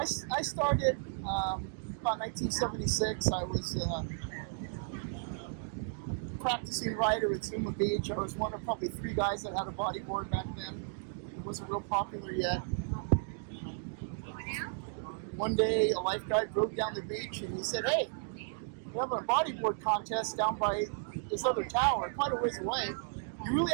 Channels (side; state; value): left; silent; digital silence